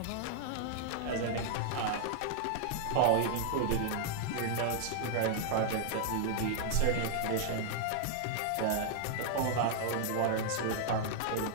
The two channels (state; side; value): different; both; correlation -0.01